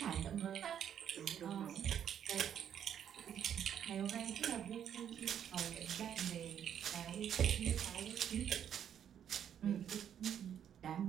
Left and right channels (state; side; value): quieter; left; 9.2 dB